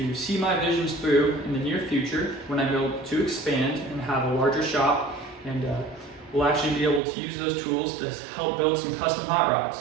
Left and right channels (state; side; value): drops out; left; at 7.0 s